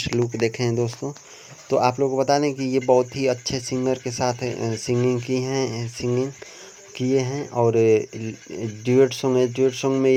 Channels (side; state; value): both; identical; correlation 1.00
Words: लुक देखे हैं दोस्तों। तो आप लोगों को बता दें कि ये बहुत ही अच्छे सिंगर के साथ सिंगिंग किए हैं और ड्यूएट सॉन्ग में